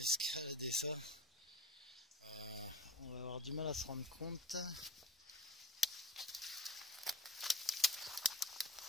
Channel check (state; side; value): normal; both; correlation 0.35